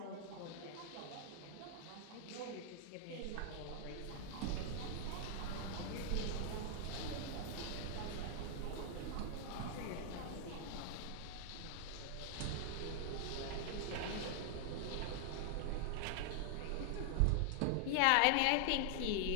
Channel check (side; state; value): both; different; correlation 0.00